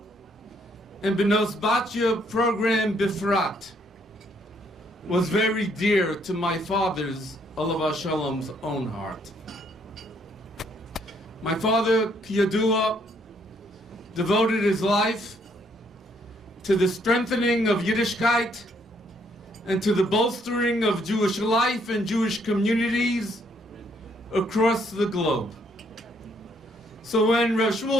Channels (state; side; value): normal; both; correlation 0.69